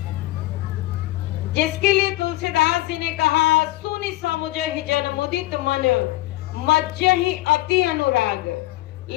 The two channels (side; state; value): right; quieter; 17.8 dB